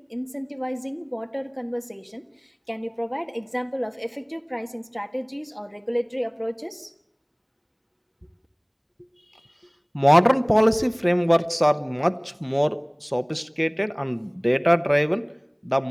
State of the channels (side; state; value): both; identical; correlation 1.00